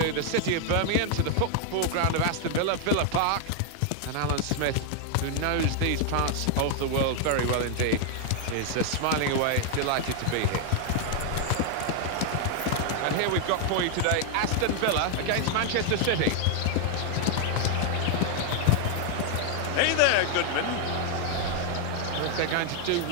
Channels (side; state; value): both; different; correlation 0.00